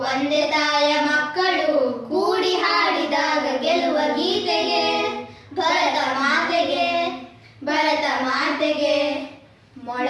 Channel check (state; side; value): identical; both; correlation 1.00